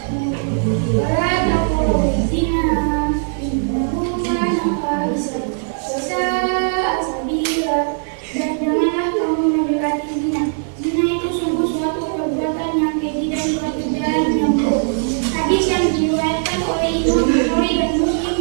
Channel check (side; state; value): left; silent; digital silence